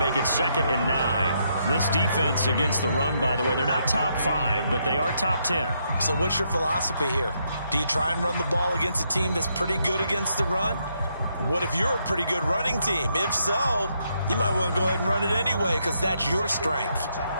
it 2nd and 9. This defense against the run, by the way, they're not top 5, but they are top 10. So what's your philosophy here? Do you try and run the ball against a team that's pretty good against the run? What if you're a pretty good running team? If so, you might want to go ahead and run it anyway because that's your strength.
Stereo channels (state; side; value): inverted; both; correlation -0.77